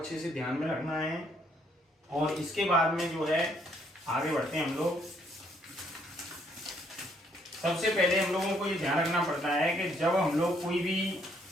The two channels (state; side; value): normal; both; correlation 0.69